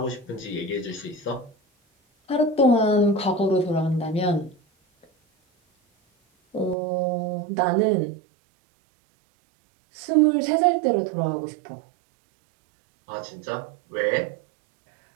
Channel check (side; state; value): left; drops out; at 6.8 s